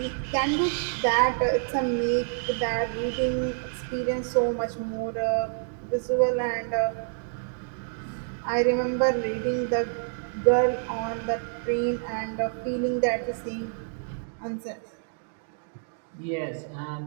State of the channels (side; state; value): left; silent; digital silence